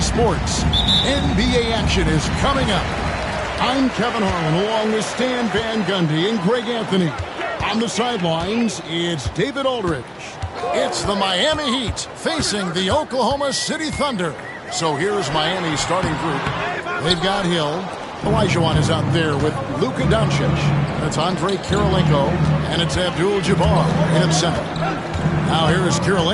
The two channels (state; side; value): identical; both; correlation 1.00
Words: Sports. NBA action is coming up. I'm Kevin Harlan along with Stan Van Gundy and Greg Anthony. On the sidelines, it's David Aldridge. It's the Miami Heat facing the Oklahoma City Thunder. So here's Miami's starting group. They've got Hill. Olajuwon is out there with Luka Doncic. That's Andre Kirilenko, and it's Abdul-Jabbar in center. Now here is